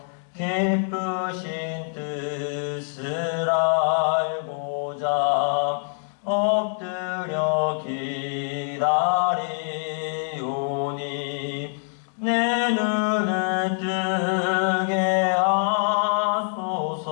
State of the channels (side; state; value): right; silent; 61 dB below the other